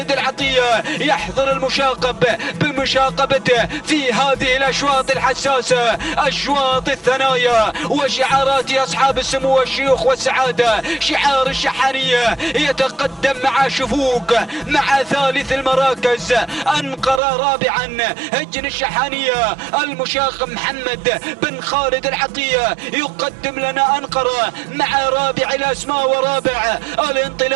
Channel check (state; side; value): drops out; left; at 17.2 s